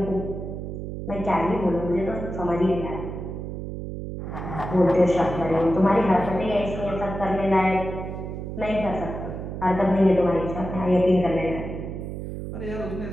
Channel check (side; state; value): right; noise; hum, 7 dB below the sound